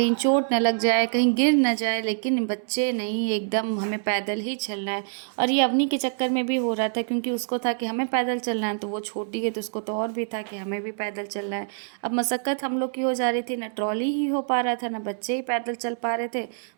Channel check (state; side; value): silent; left; 61 dB below the other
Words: चोट न लग जाए, कहीं गिर न जाए। लेकिन बच्चे नहीं, एकदम हमें पैदल ही चलना है। और ये अवनी के चक्कर में भी हो रहा था, क्योंकि उसको था कि हमें पैदल चलना है, तो वो छोटी है तो उसको तो और भी था कि हमें भी पैदल चलना है। अब मशक्क़त हम लोग की हो जा रही थी, ना ट्रॉली ही हो पा रहा था, ना बच्चे ही पैदल चल पा रहे थे,